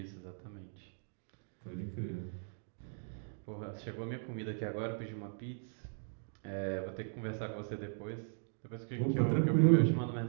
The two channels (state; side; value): silent; left; digital silence